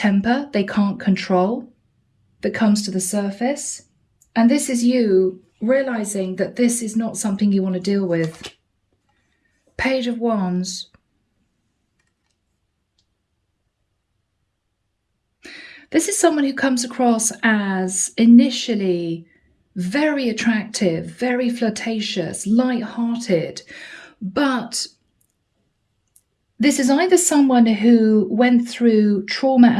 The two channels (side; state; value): both; identical; correlation 1.00